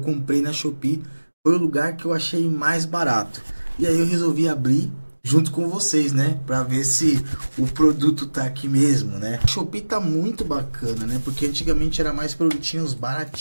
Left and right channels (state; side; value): inverted; both; correlation -1.00